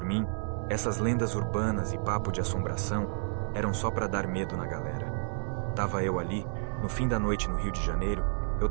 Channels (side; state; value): left; silent; digital silence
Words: mim, essas lendas urbanas e papo de assombração eram só para dar medo na galera. Tava eu ali, no fim da noite no Rio de Janeiro, eu